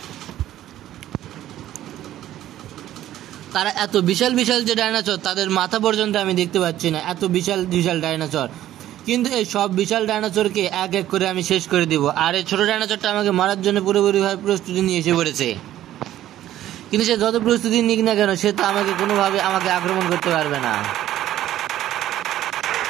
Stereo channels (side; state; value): left; quieter; 13.1 dB